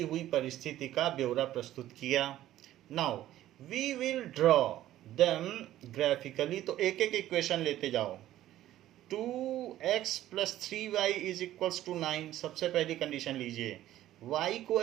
हुई परिस्थिति का ब्यौरा प्रस्तुत किया। Now we will draw them graphically. तो एक एक इक्वेशन लेते जाओ। 2x + 3y = 9। सबसे पहली कंडीशन लीजिए, y को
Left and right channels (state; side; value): quieter; left; 13.6 dB